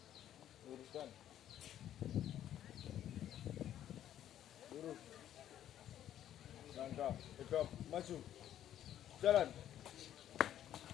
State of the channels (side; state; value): right; quieter; 11.3 dB